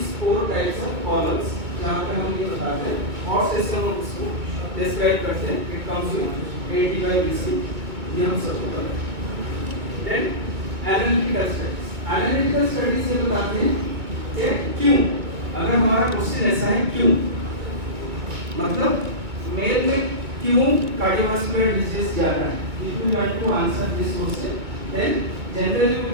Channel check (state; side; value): late; left; 2.3 ms